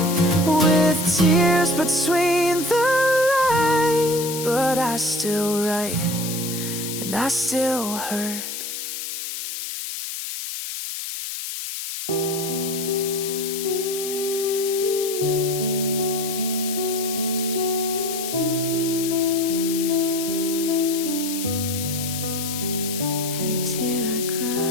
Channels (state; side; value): noise; left; hiss, 6 dB below the sound